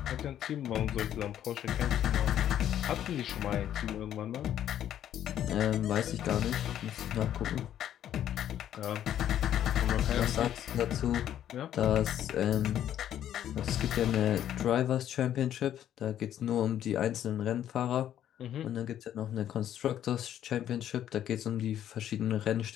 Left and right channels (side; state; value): right; quieter; 10.9 dB